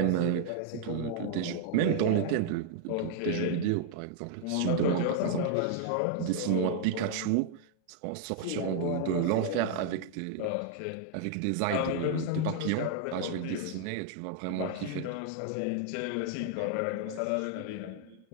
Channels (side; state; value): both; different; correlation 0.00